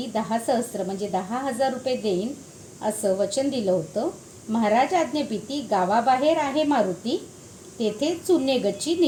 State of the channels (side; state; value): both; identical; correlation 1.00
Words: 10 सहस्त्र म्हणजे 10,000 रुपये देईन असं वचन दिलं होतं. महाराज आज्ञेपिती गावाबाहेर आहे मारुती, तेथे चुने गच्ची